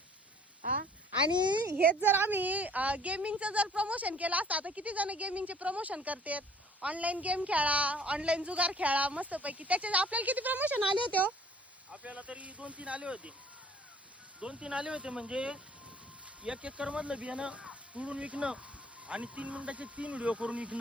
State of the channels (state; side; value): normal; both; correlation 0.54